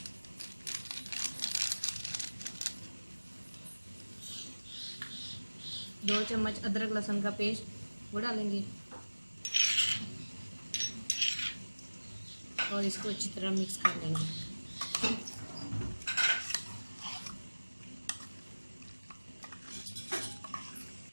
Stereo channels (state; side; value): inverted; both; correlation -1.00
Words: दो चम्मच अदरक लहसुन का पेस्ट वो डालेंगे और इसको अच्छी तरह मिक्स कर लेंगे।